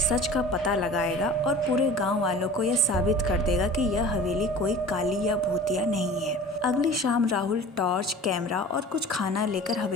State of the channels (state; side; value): normal; both; correlation 0.41